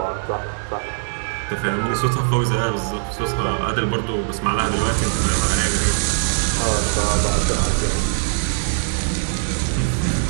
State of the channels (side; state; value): left; silent; digital silence